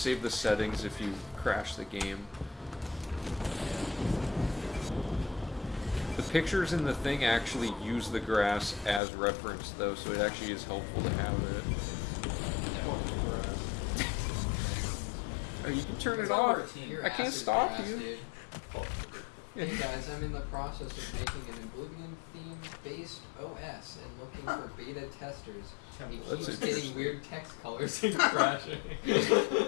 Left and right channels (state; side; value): drops out; right; at 9.0 s